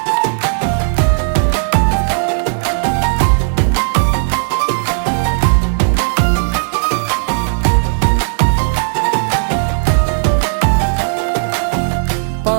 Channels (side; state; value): left; silent; digital silence